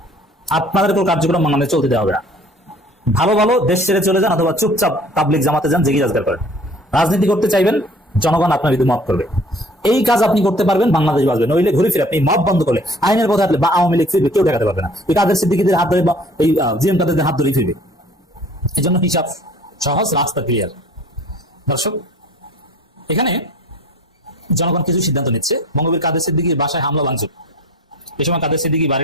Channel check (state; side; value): normal; both; correlation 0.50